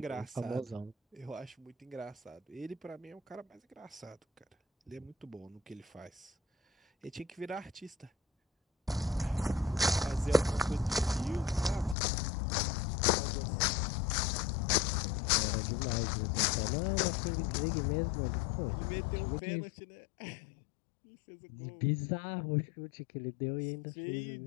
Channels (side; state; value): right; drops out; at 12.0 s